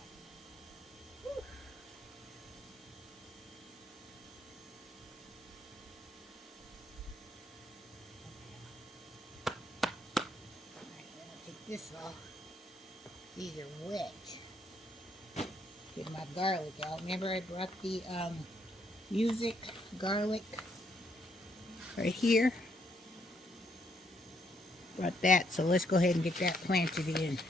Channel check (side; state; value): both; normal; correlation 0.73